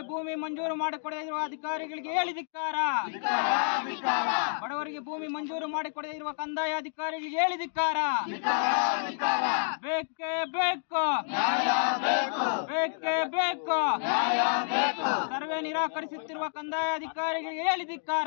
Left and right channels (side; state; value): right; silent; digital silence